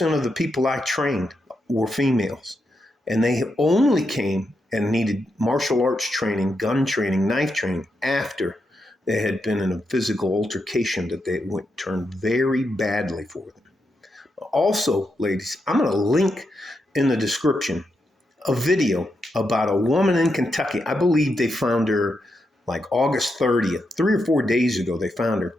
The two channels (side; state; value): both; normal; correlation 0.84